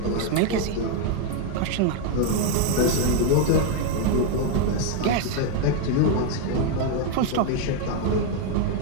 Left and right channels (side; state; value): both; different; correlation 0.01